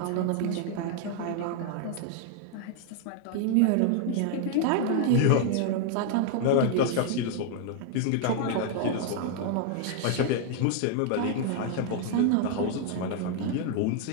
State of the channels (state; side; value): different; both; correlation 0.00